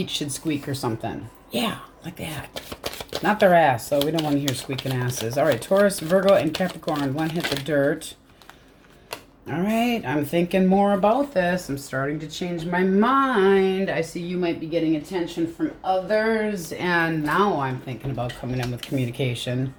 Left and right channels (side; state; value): both; identical; correlation 1.00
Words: should squeak or something. Yeah, like that. Not their ass, so we don't want to hear squeaking asses. All right. Taurus, Virgo, and Capricorn. One hit the dirt. All right. I'm thinking more about this. I'm starting to change my mind. I see you might be getting attention from others, and now I'm thinking about coming in with communication.